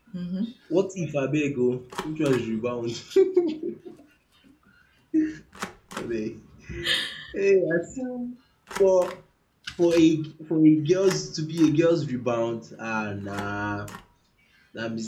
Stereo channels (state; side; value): identical; both; correlation 1.00